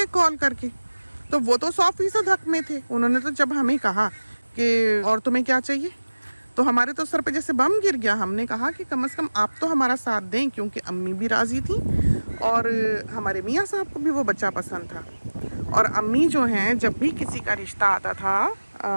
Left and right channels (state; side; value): inverted; both; correlation -1.00